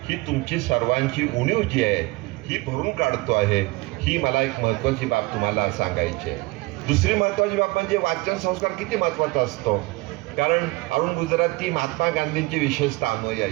ही तुमची सर्वांची उणीव जी आहे ही भरून काढतो आहे. ही मला एक महत्त्वाची बाब तुम्हाला सांगायची आहे. दुसरी महत्त्वाची बाब म्हणजे वाचन संस्कार किती महत्त्वाचा असतो. कारण अरुण गुजराती महात्मा गांधींची विशेषतः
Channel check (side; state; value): left; quieter; 22.7 dB